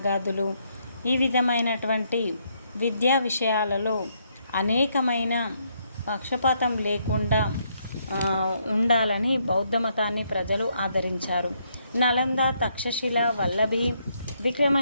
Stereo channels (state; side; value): inverted; both; correlation -0.74